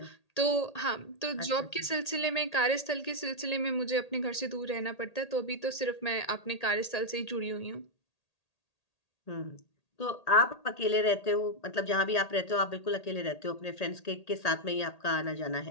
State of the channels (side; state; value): right; late; 1.8 ms